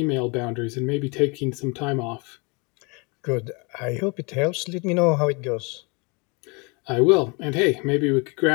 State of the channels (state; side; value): quieter; right; 30.6 dB